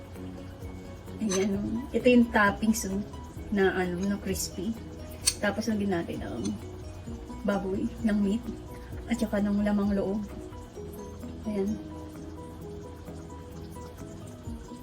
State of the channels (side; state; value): both; identical; correlation 1.00